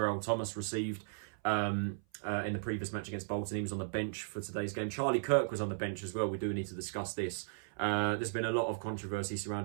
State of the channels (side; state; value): left; silent; 54 dB below the other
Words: Thomas received in the previous match against Bolton. He was on the bench for today's game. Kirk was on the bench as well. We do need to discuss this. There's been a lot of controversy